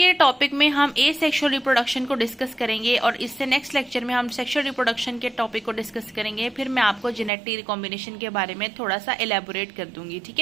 टॉपिक में हम एसेक्सुअल रिप्रोडक्शन को डिस्कस करेंगे और इससे नेक्स्ट लेक्चर में हम सेक्सुअल रिप्रोडक्शन के टॉपिक को डिस्कस करेंगे। फिर मैं आपको जेनेटिक रिकॉम्बिनेशन के बारे में थोड़ा सा एलैबोरेट कर दूंगी। ठीक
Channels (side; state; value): left; drops out; at 7.3 s